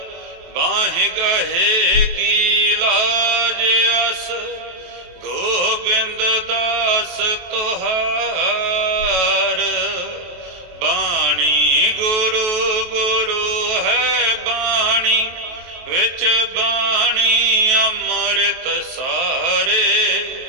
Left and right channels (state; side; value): late; left; 23 ms